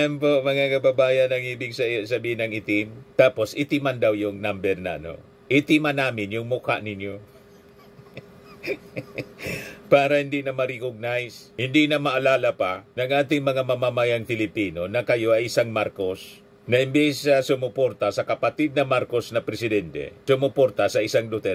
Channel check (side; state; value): both; identical; correlation 1.00